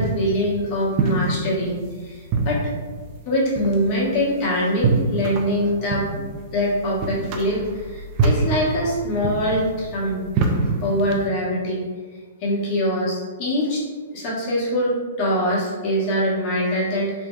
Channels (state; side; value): inverted; both; correlation -0.33